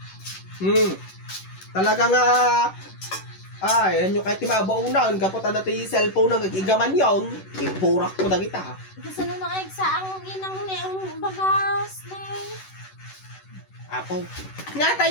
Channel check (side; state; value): right; late; 11 ms